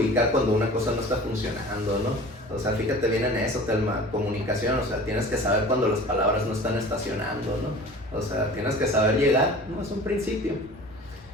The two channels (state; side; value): normal; both; correlation 0.41